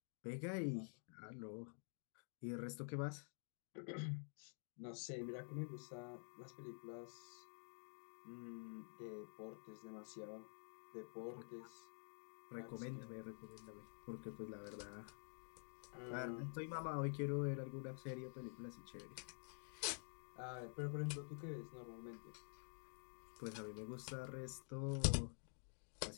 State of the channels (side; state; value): right; silent; digital silence